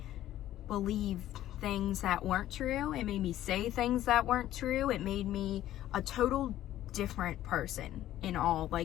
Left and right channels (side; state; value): right; quieter; 13.2 dB